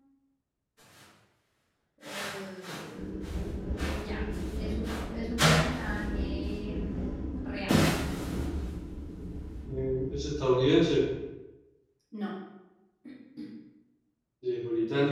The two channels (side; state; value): both; identical; correlation 1.00